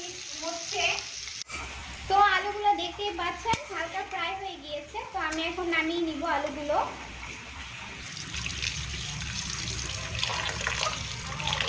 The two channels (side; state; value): both; identical; correlation 1.00